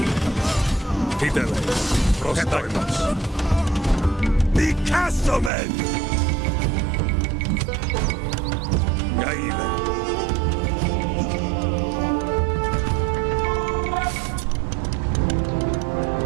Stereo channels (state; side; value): drops out; left; at 5.5 s